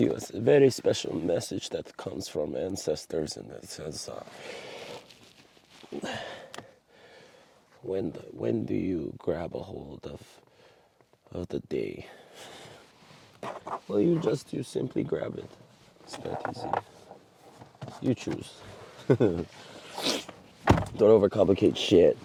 a very special message that comes from ancestors, and it says, when do you grab a hold of the day? Well, you simply grab it. It's that easy. You choose. Don't overcomplicate shit.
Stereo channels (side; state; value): both; identical; correlation 1.00